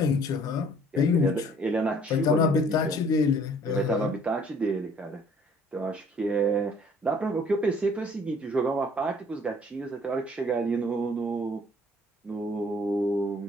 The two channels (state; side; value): normal; both; correlation 0.57